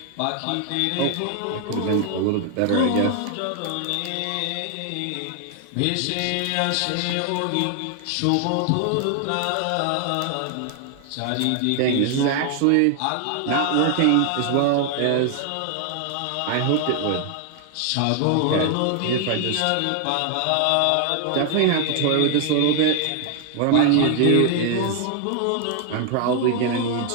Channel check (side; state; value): both; different; correlation 0.00